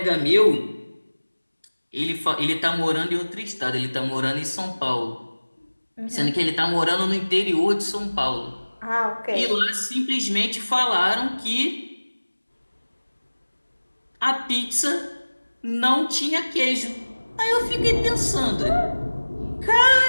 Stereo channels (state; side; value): inverted; both; correlation -1.00